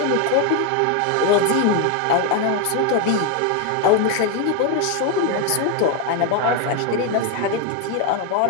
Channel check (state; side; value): different; both; correlation 0.01